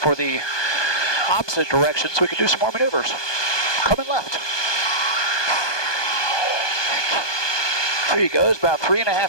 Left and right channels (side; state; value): right; late; 1.2 ms